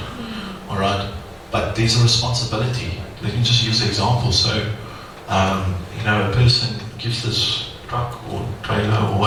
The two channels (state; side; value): identical; both; correlation 1.00